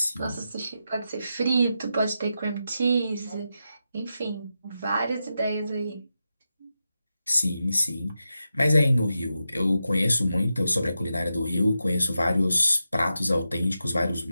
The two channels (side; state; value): both; inverted; correlation -0.89